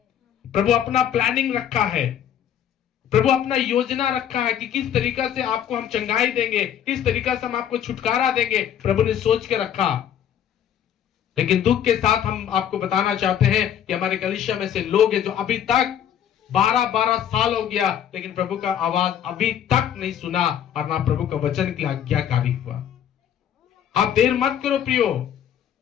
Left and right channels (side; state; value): right; quieter; 9.7 dB